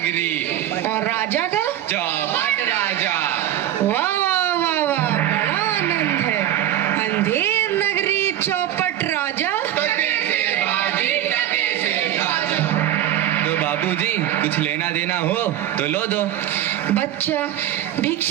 और राजा का? चौपट राजा। वाह वाह वाह वाह, बड़ा आनंद है। अंधेर नगरी, चौपट राजा। तो बाबूजी, कुछ लेना देना हो तो लो दो। बच्चा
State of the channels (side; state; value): left; quieter; 12.1 dB